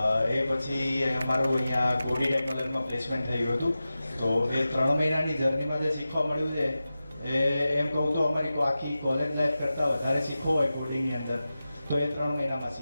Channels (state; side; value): inverted; both; correlation -0.94